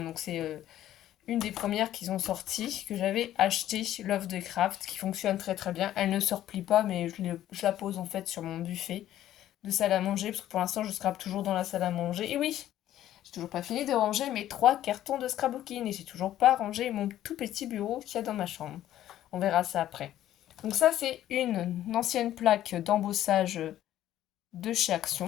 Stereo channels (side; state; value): right; quieter; 12.6 dB